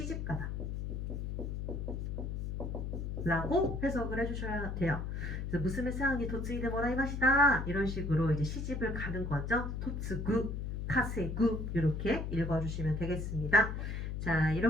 라고 해석을 해주셔야 돼요. 그래서 무스메 상이 도츠이데 모라이마시다 이런 식으로 이제 시집을 가는 거죠. 토츠구, 카세구 이렇게 읽어주시면 되겠습니다. 자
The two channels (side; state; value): left; noise; hum, 3 dB below the sound